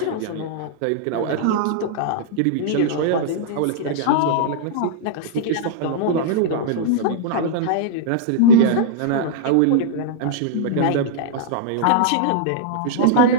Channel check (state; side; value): different; both; correlation -0.02